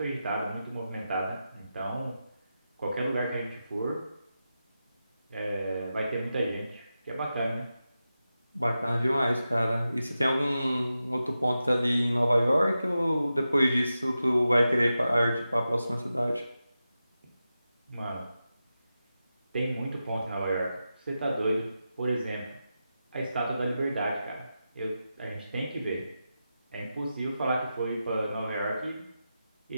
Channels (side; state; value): both; inverted; correlation -0.91